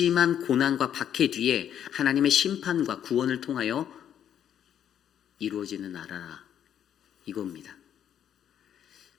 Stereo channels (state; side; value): quieter; right; 9.7 dB